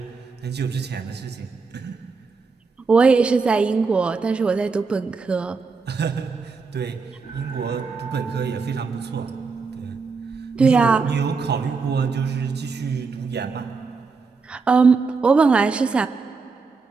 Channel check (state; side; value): quieter; left; 4.7 dB